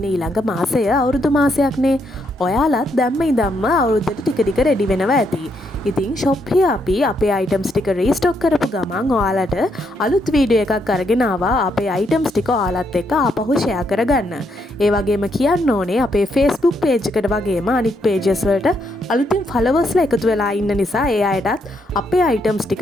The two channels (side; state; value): both; normal; correlation 0.76